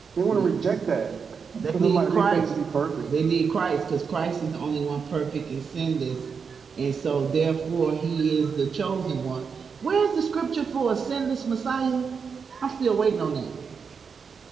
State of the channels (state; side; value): quieter; left; 5.9 dB